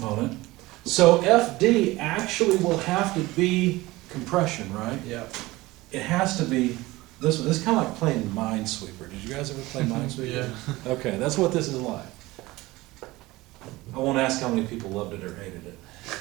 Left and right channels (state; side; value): quieter; left; 19.8 dB